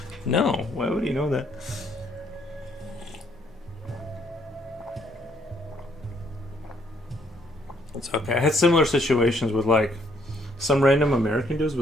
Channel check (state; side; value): normal; both; correlation 0.68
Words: No. Why would he know that? It's okay. I had similar situations with like some random American dudes